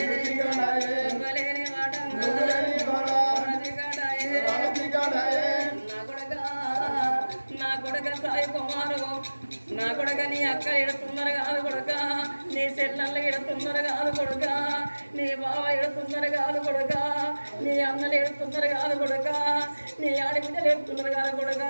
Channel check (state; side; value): inverted; both; correlation -1.00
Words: నా కొడుక నీ అక్క ఎడుతున్నారు కాదు కొడుక నీ చెల్లెళ్ళు ఎడుతున్నారు కాదు కొడుక నీ బావ ఎడుతున్నారు కాదు కొడుక నీ అన్నలు ఎడుతున్నారు కాదు కొడుక నీ ఆడబిడ్డలు ఎడుతున్నారు కాదు కొడుక